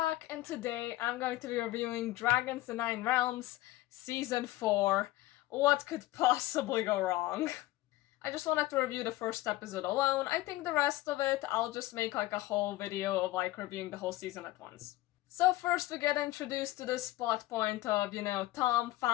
back, and today I'm going to be reviewing Dragons: The Nine Realms, Season 4. What could possibly go wrong? I just wanted to review the first episode alone. I think the rest of it, I'll just make like a whole video of like reviewing the whole season at once. So first we get introduced to this plot point of, Tom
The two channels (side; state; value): right; quieter; 17.2 dB